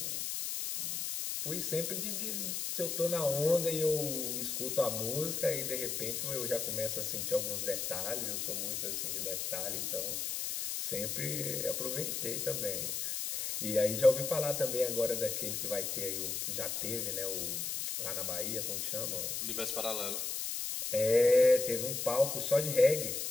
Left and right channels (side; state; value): left; noise; hiss, 2 dB below the sound